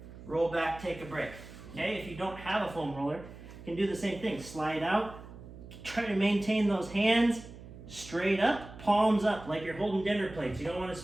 roll back, take a break. Okay, if you don't have a foam roller, you can do the same thing. Slide out, try to maintain those hands straight up, palms up, like you're holding dinner plates. You don't want to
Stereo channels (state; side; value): noise; right; hum, 16 dB below the sound